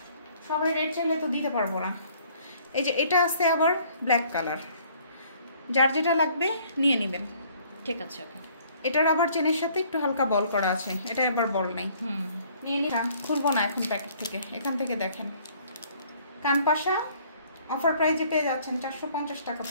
সবাই রেড চাইলে তো দিতে পারবো না। এই যে এটা আছে আবার ব্ল্যাক কালার, যার যেটা লাগবে নিয়ে নেবেন। ঠিক আছে, ওকে। এটার আবার চেনের সাথে একটু হালকা বল করা আছে, এটা এবার বল নাই। নিয়ে নিলাম, খুলবো না এখন প্যাকেট থেকে। এখান থেকে দেখেন কানপাশা অফার প্রাইজে পেয়ে যাচ্ছেন, 450 টাকা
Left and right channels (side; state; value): both; inverted; correlation -0.59